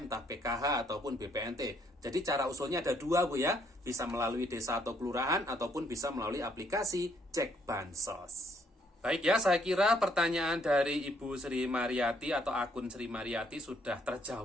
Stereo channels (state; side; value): normal; both; correlation 0.68